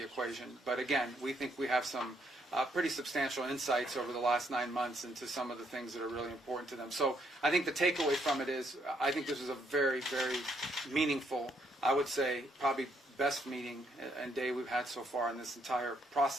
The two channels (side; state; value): both; normal; correlation 0.72